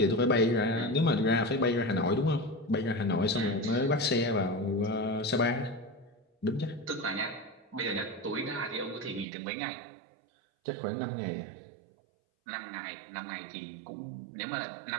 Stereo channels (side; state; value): left; drops out; at 9.2 s